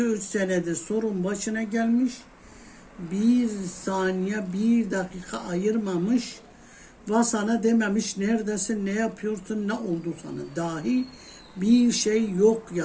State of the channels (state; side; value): identical; both; correlation 1.00